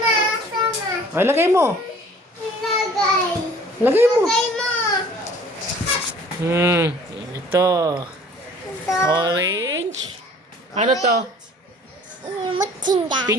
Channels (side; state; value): both; normal; correlation 0.51